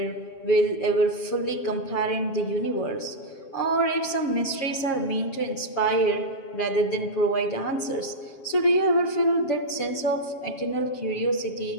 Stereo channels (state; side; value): late; right; 7.4 ms